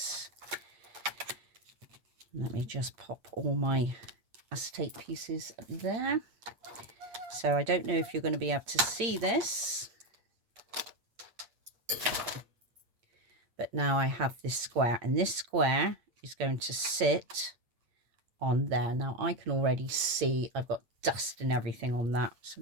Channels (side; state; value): left; late; 8.7 ms